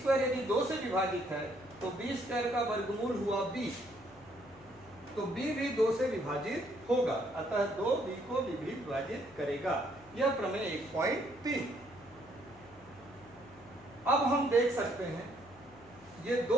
यदि 2 से विभाजित है तो b स्क्वायर का वर्गमूल हुआ b, तो b भी 2 से विभाजित होगा, अतः 2 b को भी विभाजित करेगा। यह प्रमेय 1.3। अब हम देख सकते हैं ये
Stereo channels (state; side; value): noise; left; hum, 24 dB below the sound